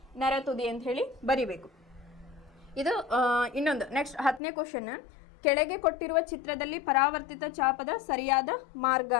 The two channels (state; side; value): drops out; right; at 4.4 s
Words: ನರತುದಿ ಅಂತ ಹೇಳಿ ಬರಿಬೇಕು. ಇದು ಇನ್ನೊಂದು ನೆಕ್ಸ್ಟ್ 10ನೇ ಕ್ವಶನ್, ಕೆಳಗೆ ಕೊಟ್ಟಿರುವ ಚಿತ್ರದಲ್ಲಿ ಪರಾವರ್ತಿತ ಚಾಪದ ಸರಿಯಾದ ಮಾರ್ಗ